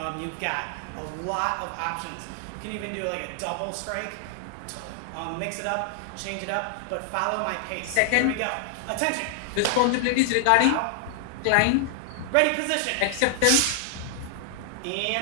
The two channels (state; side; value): different; both; correlation 0.00